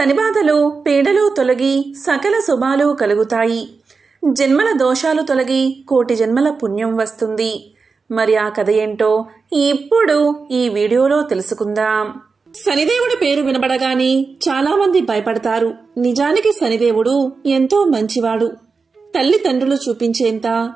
పీడలు తొలగి సకల శుభాలు కలుగుతాయి. జన్మల దోషాలు తొలగి కోటి జన్మల పుణ్యం వస్తుంది. మరి ఆ కథ ఏంటో ఇప్పుడు ఈ వీడియోలో తెలుసుకుందాం. శనిదేవుడి పేరు వినబడగానే చాలా మంది భయపడతారు. నిజానికి శనిదేవుడు ఎంతో మంచివాడు. తల్లిదండ్రులు చూపించేంత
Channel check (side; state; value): left; quieter; 4.7 dB